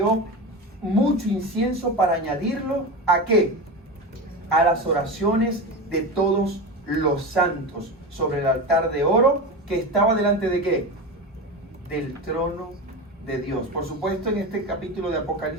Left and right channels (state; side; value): normal; both; correlation 0.23